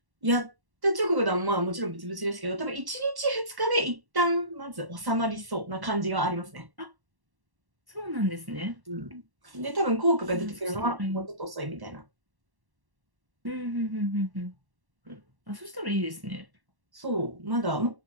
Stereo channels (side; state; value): left; late; 1.1 ms